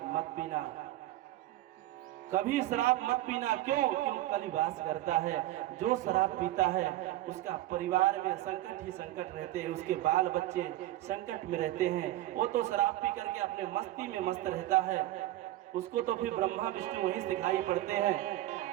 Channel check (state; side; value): quieter; left; 15.4 dB